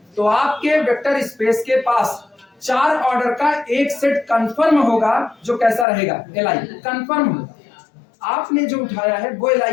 तो आपके वेक्टर स्पेस के पास 4 ऑर्डर का एक सेट कंफर्म होगा जो कैसा रहेगा, LI कंफर्म होगा। आपने जो उठाया है वो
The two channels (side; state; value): right; drops out; at 5.9 s